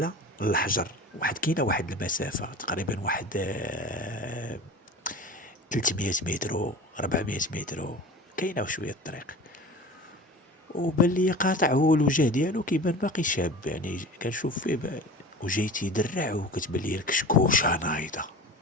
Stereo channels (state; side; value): normal; both; correlation 0.37